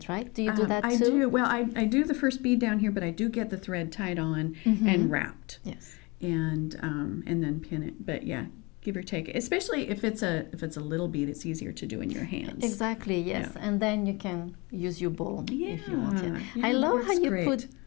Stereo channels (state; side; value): quieter; right; 26.5 dB